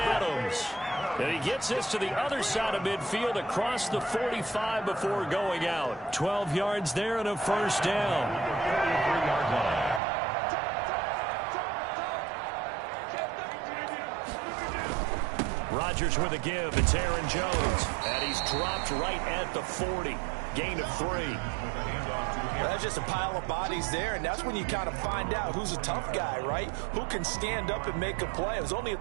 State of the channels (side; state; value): left; drops out; at 10.0 s